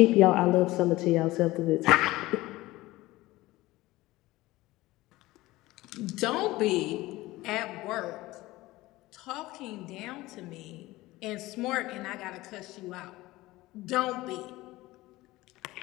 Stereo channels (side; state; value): right; quieter; 18.7 dB